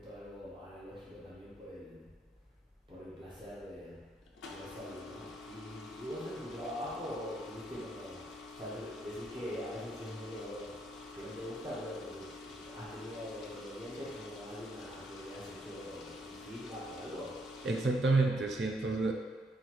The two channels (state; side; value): normal; both; correlation 0.74